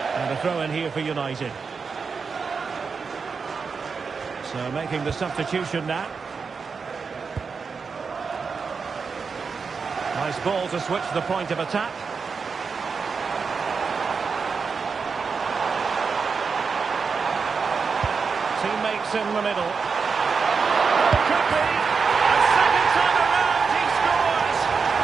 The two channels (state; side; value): quieter; left; 5.3 dB